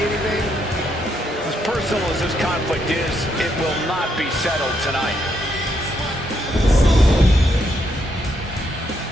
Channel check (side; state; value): both; normal; correlation 0.76